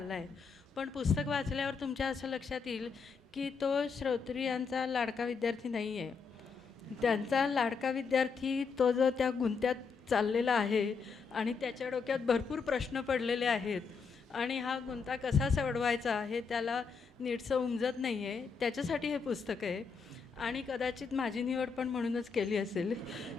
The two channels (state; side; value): quieter; right; 5.3 dB